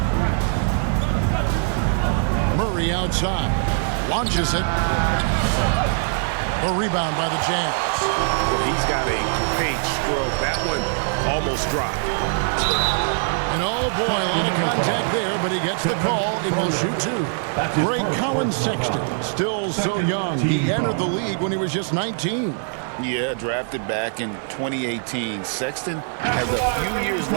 Murray outside. Launches it. The rebound by the Jazz. Well, he's got a great stroke. That one almost dropped. And oh boy, a lot of contact there, but he gets the call and will shoot two. Great Colin Sexton, still so young. He entered the league when he was just 19. Yeah, drafted back in 2018. Sexton has a few years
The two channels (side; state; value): left; silent; digital silence